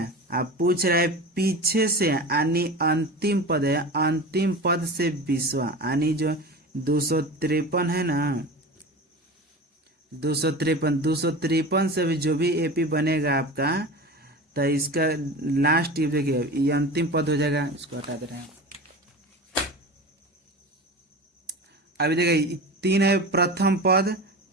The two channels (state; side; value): normal; both; correlation 0.31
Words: आप पूछ रहे हैं पीछे से यानी अंतिम पद है, अंतिम पद से 20वां यानी जो 253 है ना, 253 से भी जो भी एपी बनेगा आपका, तो इसका लास्ट ये देखिए ये अंतिम पद हो जाएगा, इसको हटा दे रहे हैं। अभी देखिए 3 है प्रथम पद,